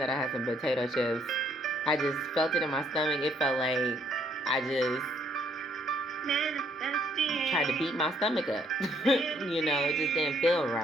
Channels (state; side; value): normal; both; correlation 0.67